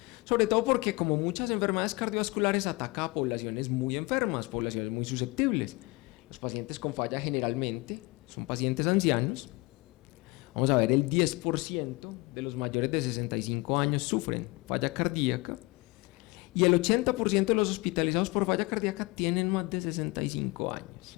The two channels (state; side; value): quieter; right; 24.6 dB